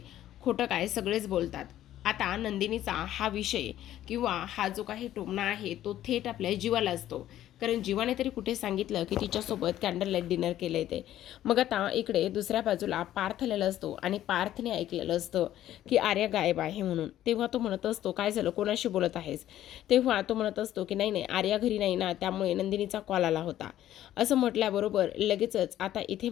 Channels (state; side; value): quieter; right; 12.7 dB